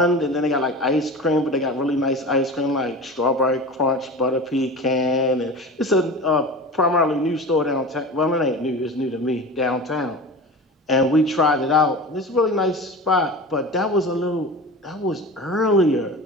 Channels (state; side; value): normal; both; correlation 0.32